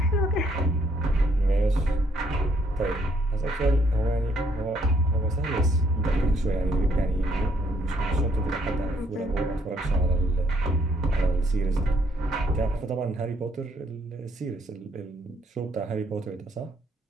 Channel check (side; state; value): both; normal; correlation 0.68